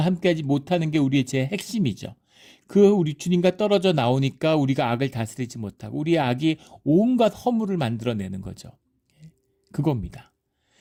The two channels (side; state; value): both; identical; correlation 1.00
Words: 함께하지 못하는 게 우리의 죄의 핵심이죠. 우리 주님과 떨어져 나오니까 우리가 악을 다스리지 못하고 우리의 악이 온갖 허물을 만들어내는 거죠. 그겁니다.